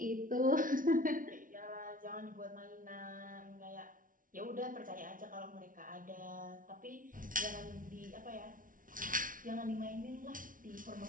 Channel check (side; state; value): left; late; 0.39 ms